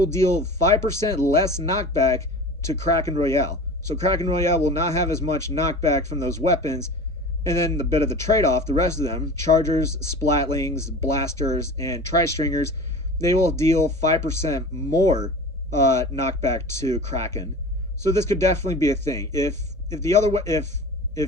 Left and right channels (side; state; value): both; normal; correlation 0.37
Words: deal 5% less knockback to Kraken Royale. So Kraken Royale will not have as much knockback from those weapons, and then the bit of the trade-off, the rest of them, Chargers, Splatlings, Blasters, and Tri-Stringers, they will deal 5% more knockback to Kraken. So this could definitely be a thing. If